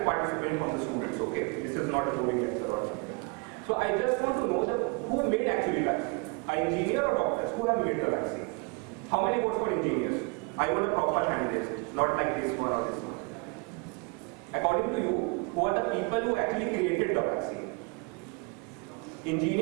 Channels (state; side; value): quieter; left; 30.6 dB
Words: participant from the students, okay? This is not a boring answer or something. So I just want to know who made actually vaccine? An engineer or doctors? Who have made the vaccine? How many votes for engineers? I want a proper hand raised, not like this one or this one. According to you, who are the people who actually created the vaccine?